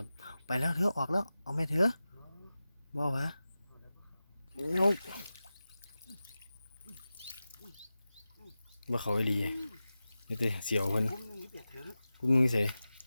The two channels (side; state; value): both; inverted; correlation -0.94